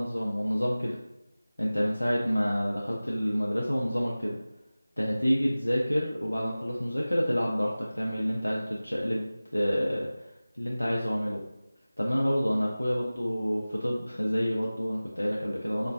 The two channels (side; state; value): both; inverted; correlation -0.98